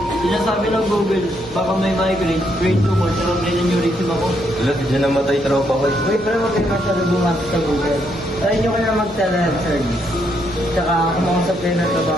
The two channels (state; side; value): normal; both; correlation 0.75